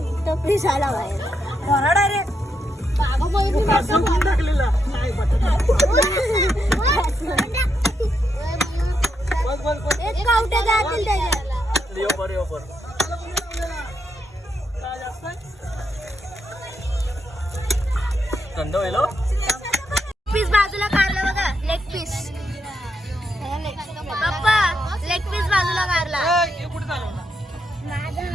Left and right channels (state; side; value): normal; both; correlation 0.81